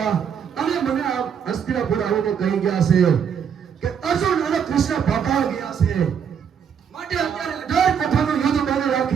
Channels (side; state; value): left; quieter; 7.6 dB